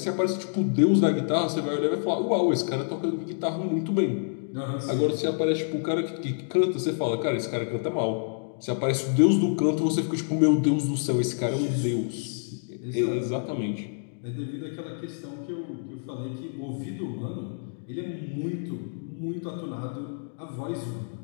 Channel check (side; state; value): right; silent; digital silence